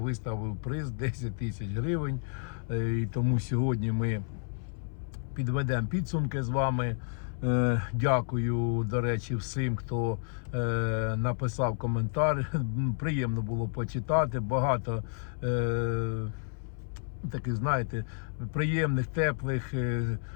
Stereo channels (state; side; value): silent; right; 57 dB below the other